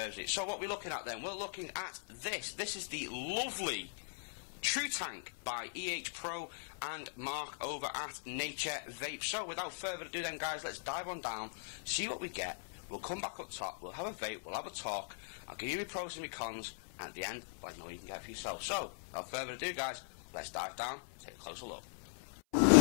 it. So what we're looking at then, we're looking at this. This is the lovely True Tank by EHpro and Mark over at Nature Vape. So without further ado then, guys, let's dive on down, see what we get. We'll come back up top, we'll have a vape, we'll have a talk, I'll give you my pros and my cons, and at the end, let you know what you can get for yourself. So without further ado, guys, let's dive down, take a closer look.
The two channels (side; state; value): right; silent; 51 dB below the other